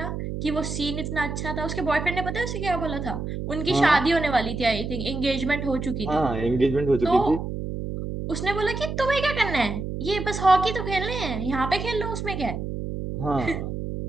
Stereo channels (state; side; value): noise; right; hum, 5 dB below the sound